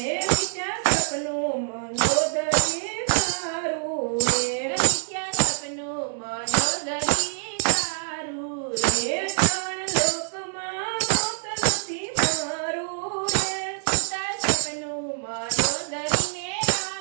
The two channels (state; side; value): silent; left; digital silence